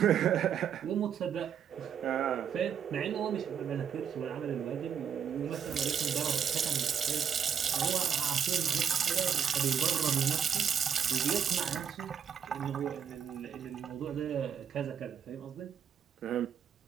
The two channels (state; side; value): quieter; left; 7.9 dB